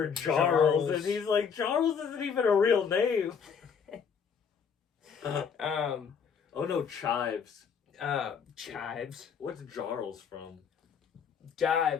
Charles. And he's like, Charles isn't even a real name. Oh no, Chives. Chives. What's Jarls from?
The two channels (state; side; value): quieter; right; 6.7 dB